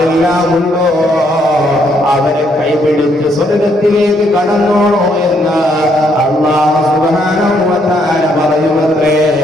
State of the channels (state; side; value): normal; both; correlation 0.72